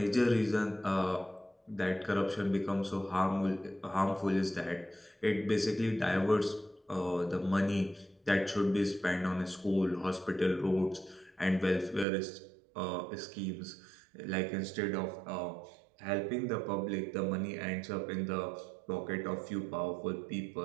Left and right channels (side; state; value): left; drops out; at 12.1 s